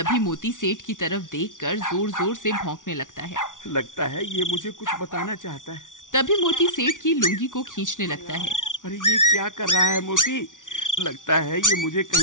मोती सेठ की तरफ देखकर जोर जोर से भौंकने लगता है। लगता है ये मुझे कुछ बताना चाहता है। तभी मोती सेठ की लुंगी को खींचने लगता है। अरे ये क्या कर रहा है मोती? लगता है ये मुझे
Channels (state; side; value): late; right; 0.87 ms